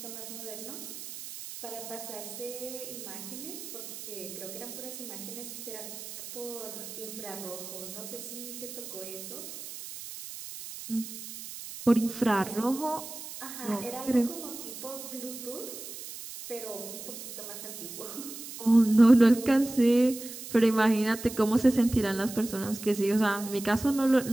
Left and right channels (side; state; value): right; noise; hiss, 11 dB below the sound